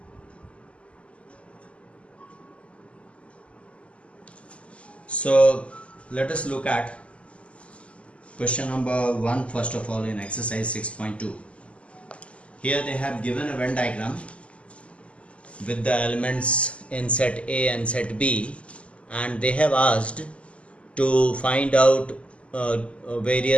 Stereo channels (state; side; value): late; right; 0.059 ms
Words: So let us look at question number 1 first of all in exercise 6.2. Here they have given a Venn diagram with the elements in set A and set B, and they have asked to find out